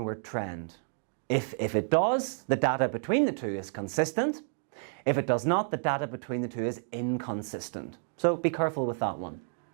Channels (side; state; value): left; silent; 58 dB below the other